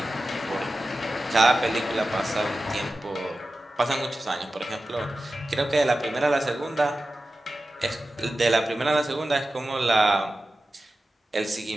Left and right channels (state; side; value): normal; both; correlation 0.94